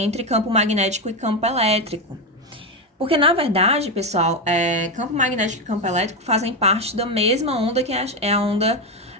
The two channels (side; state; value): both; normal; correlation 0.11